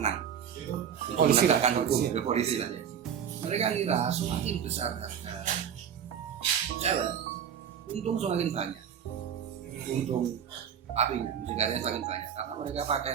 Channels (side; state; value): left; quieter; 8.4 dB